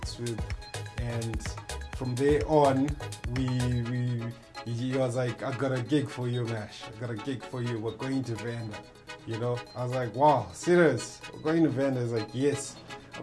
with. And from there on, he was like, I got a gig for you, Mash, I got a gig for you, we're going to Vanda, you know. I was like, wow, serious, we're going to Vanda? He's like, yes.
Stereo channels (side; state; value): both; identical; correlation 1.00